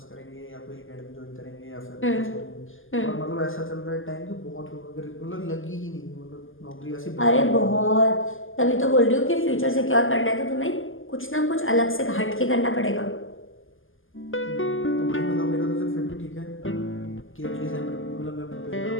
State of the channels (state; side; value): late; right; 0.59 ms